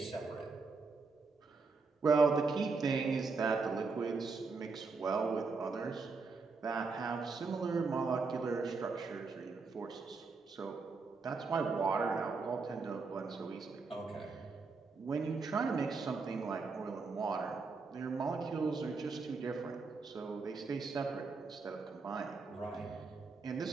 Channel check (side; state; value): left; quieter; 4.4 dB